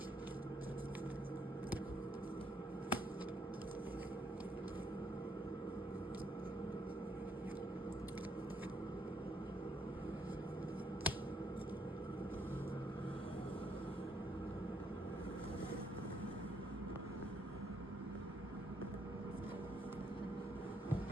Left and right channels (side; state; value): both; normal; correlation 0.72